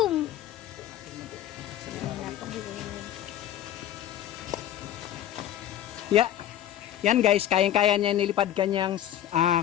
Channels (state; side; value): quieter; right; 11.6 dB